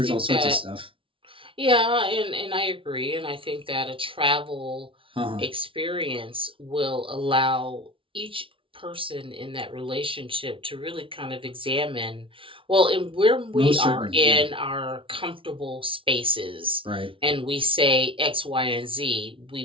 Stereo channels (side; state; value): left; late; 0.25 ms